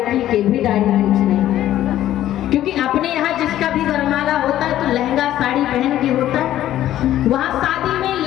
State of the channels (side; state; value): right; quieter; 12.8 dB